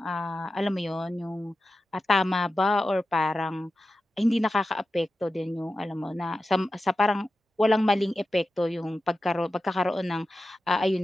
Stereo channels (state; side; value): normal; both; correlation 0.92